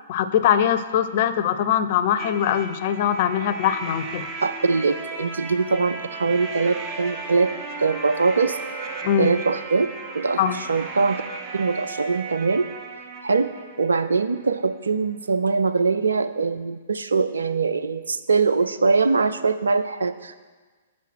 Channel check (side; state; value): both; inverted; correlation -0.67